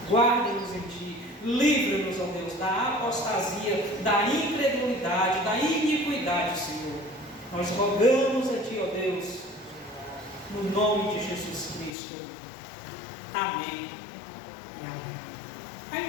Guarda-nos em Ti. Livra-nos, ó Deus, da apostasia, da incredulidade, da iniquidade, Senhor. Nós rogamos a Ti, ó Deus, no nome de Jesus Cristo. Amém e amém.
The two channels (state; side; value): drops out; right; at 11.9 s